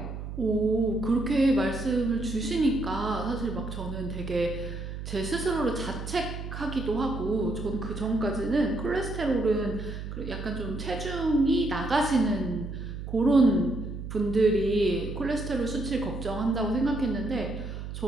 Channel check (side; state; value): right; noise; hum, 8 dB below the sound